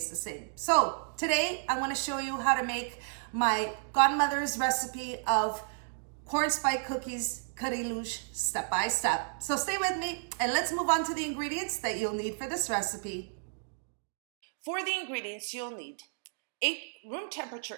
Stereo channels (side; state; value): left; silent; digital silence